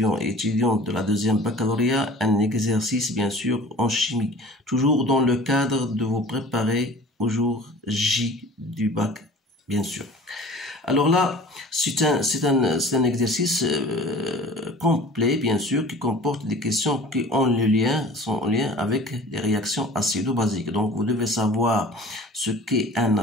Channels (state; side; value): normal; both; correlation 0.44